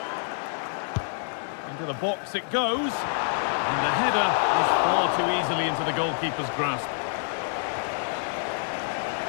Into the box it goes, and the header is far too easily into the goalkeeper's grasp.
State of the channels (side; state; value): right; silent; 60 dB below the other